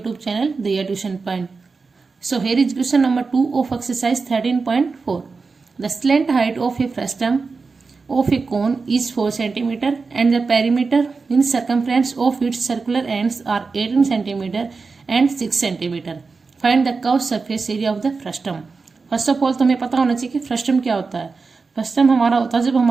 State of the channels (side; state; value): left; quieter; 4.4 dB